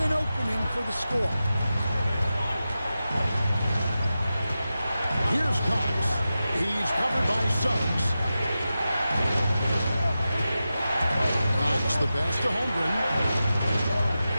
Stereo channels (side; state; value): both; inverted; correlation -0.93